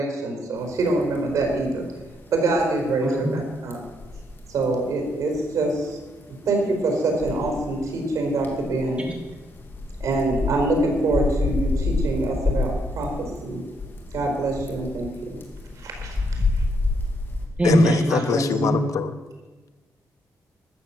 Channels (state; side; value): normal; both; correlation 0.74